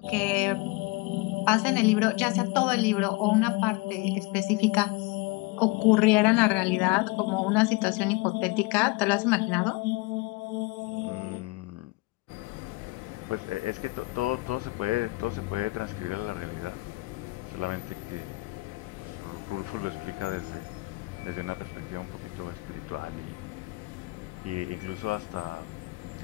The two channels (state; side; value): quieter; right; 24.5 dB